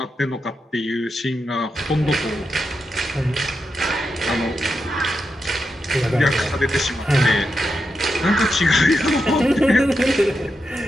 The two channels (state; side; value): normal; both; correlation 0.87